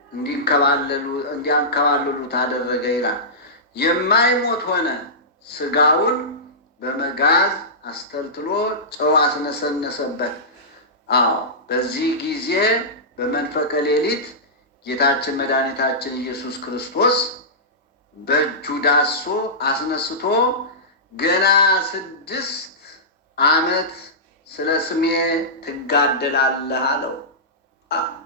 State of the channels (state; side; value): normal; both; correlation -0.16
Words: እንዲያንከባልሉት አደረገ ይላል። የማይሞት ሆነ። ስጋውን በመጋዝ አስተልትሎ ጨው አስነሰነሰበት። አዎ በዚህ ጊዜ በመንፈቀ ሌሊት ጌታችን መድኃኒታችን ኢየሱስ ክርስቶስ በእጁ ዳሶ አስነስቶ ገና 6 ዓመት ስለ ስሜ ትጋደላለህ አለው።